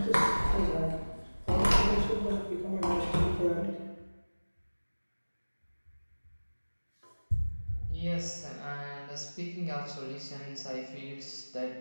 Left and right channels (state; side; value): inverted; both; correlation -1.00